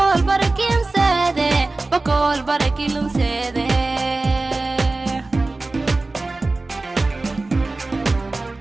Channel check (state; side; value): quieter; left; 3.2 dB